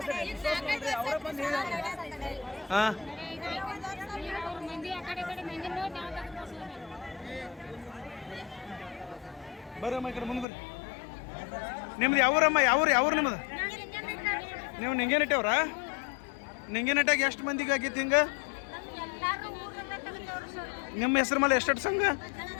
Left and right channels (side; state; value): right; drops out; at 10.5 s